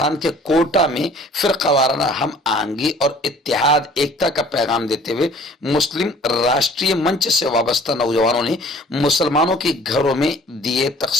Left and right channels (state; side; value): normal; both; correlation 0.52